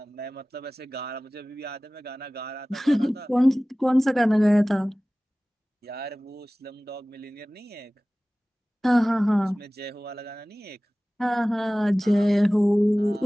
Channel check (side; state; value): both; normal; correlation 0.98